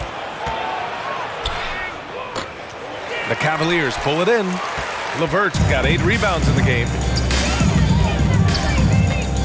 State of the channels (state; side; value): identical; both; correlation 1.00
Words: The Cavaliers pull it in. LeVert got 8 rebounds in the game.